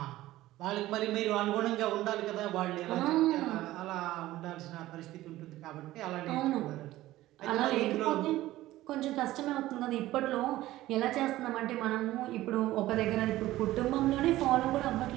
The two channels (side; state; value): left; quieter; 16.0 dB